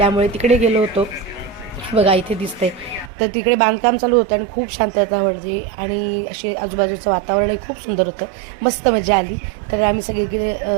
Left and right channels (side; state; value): left; drops out; at 3.1 s